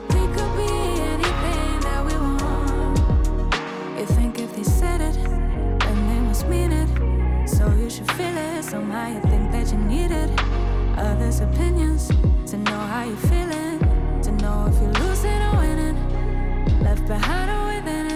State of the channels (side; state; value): both; identical; correlation 1.00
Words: We could be anything that we want. You think if they said it, then they must mean it. So you should feel it, somehow you think that you need it. Others' opinions, to know how you're feeling, to know if you're losing or winning, left behind or within